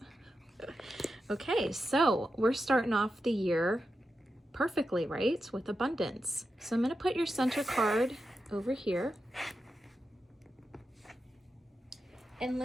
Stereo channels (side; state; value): both; normal; correlation 0.89